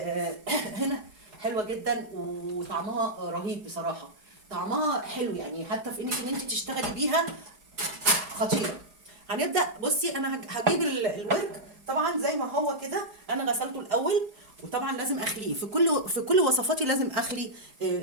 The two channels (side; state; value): left; late; 4.8 ms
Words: هنا حلوة جدا وطعمها رهيب بصراحة. طعمها حلو يعني، حتى في انك ان انت تشتغلي بيها خطيره. هنبدا. بصي انا هجيب الورك طبعا زي ما هو كده، انا غسلته الاول، وطبعا لازم اخليه في كل وصفاتي، لازم اخلي